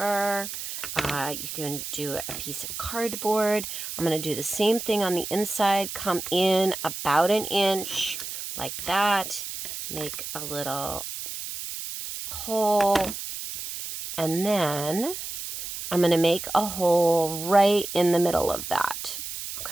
You can do a piece of cardboard. I'm going to do the same thing on the inside. Come in about 1 inch like that. Make a little hole. And then I'm going to make a hole right in the middle of that.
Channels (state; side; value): noise; right; hiss, 7 dB below the sound